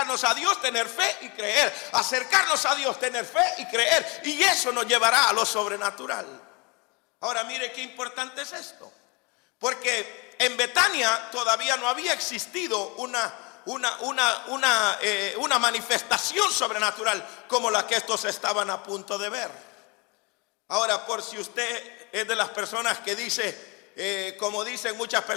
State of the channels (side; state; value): right; quieter; 28.5 dB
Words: a Dios, tener fe y creer. Acercarnos a Dios, tener fe y creer. Y eso nos llevará a lo sobrenatural. Ahora mire qué importante es esto. Porque en Betania todavía no había existido una manifestación sobrenatural como la que estos estaban a punto de ver. Ahora, por si usted es de las personas que dice, como dicen muchas